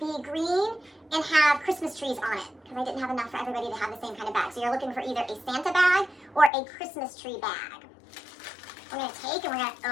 green and have Christmas trees on it, because I didn't have enough for everybody to have the same kind of bag. So you're looking for either a Santa bag or a Christmas tree bag. We're going to take and we're going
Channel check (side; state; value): right; drops out; at 6.5 s